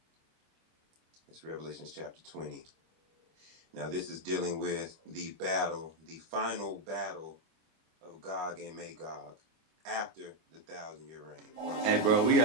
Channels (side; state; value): left; late; 25 ms